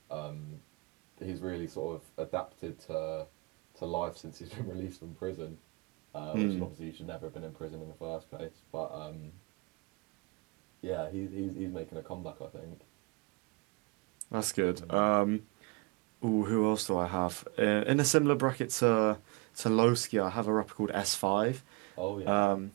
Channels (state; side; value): quieter; left; 27.5 dB